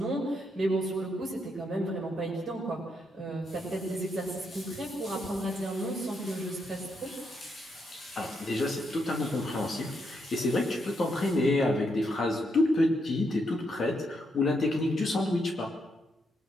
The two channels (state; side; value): normal; both; correlation 0.79